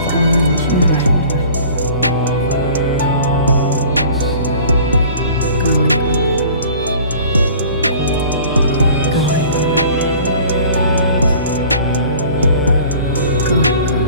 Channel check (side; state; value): both; inverted; correlation -0.46